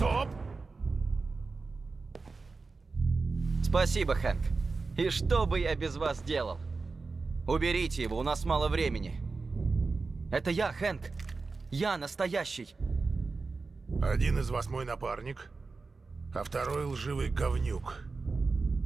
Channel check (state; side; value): quieter; left; 4.1 dB